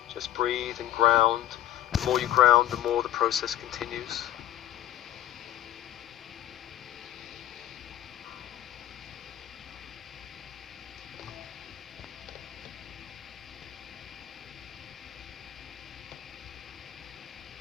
Just breathe and ground. The more you ground, the more the process continues.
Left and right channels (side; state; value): right; quieter; 12.9 dB